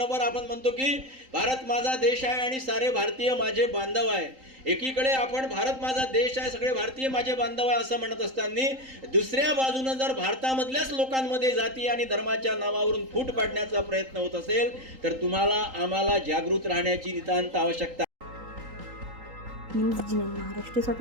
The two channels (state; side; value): late; left; 3.8 ms